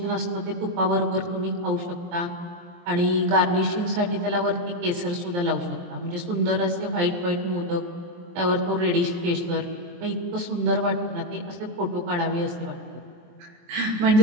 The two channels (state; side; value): late; left; 23 ms